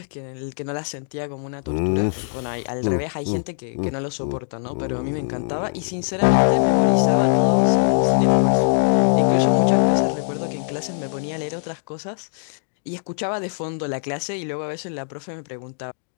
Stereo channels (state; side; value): silent; right; digital silence